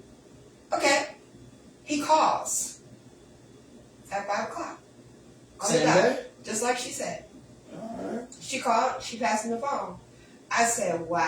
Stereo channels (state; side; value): identical; both; correlation 1.00